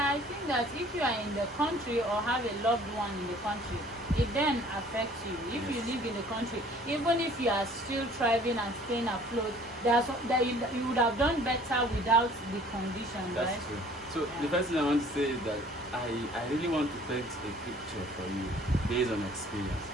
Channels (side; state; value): both; normal; correlation 0.53